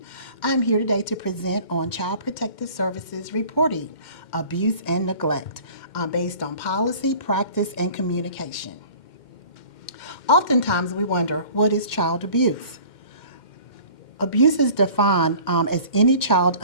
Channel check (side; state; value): right; late; 2.1 ms